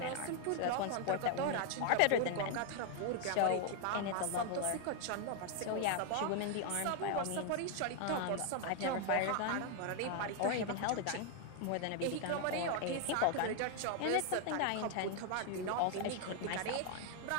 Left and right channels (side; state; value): both; different; correlation 0.00